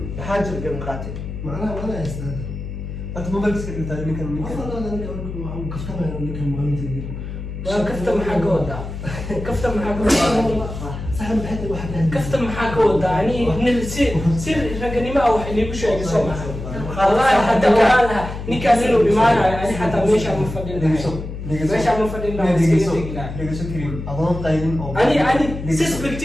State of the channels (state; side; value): noise; left; hum, 8 dB below the sound